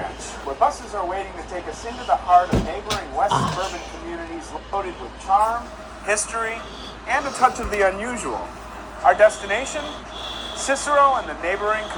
where buses are waiting to take us into the heart of neighboring west suburban communities loaded with charm, history, and a touch of the unusual. Our destination? Cicero and the neighboring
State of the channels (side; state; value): both; identical; correlation 1.00